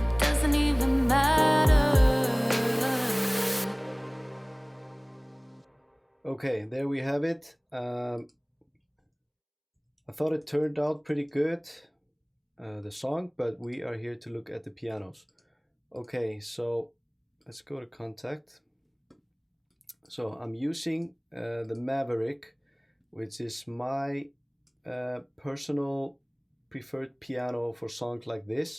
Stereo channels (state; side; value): identical; both; correlation 1.00